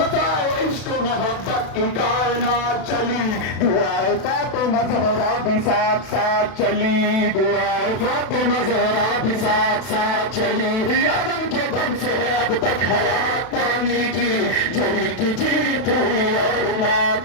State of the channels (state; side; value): late; right; 32 ms